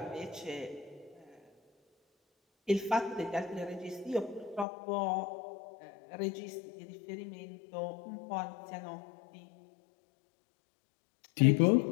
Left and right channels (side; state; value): right; drops out; at 4.7 s